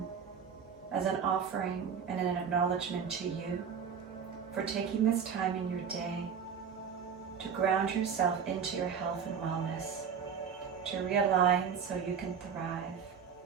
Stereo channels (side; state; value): left; quieter; 7.1 dB